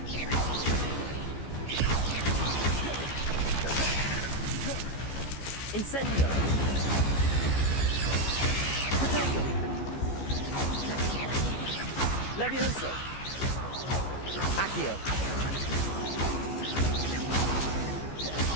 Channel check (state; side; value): late; right; 15 ms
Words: Incendio! Potato! Levioso! Accio!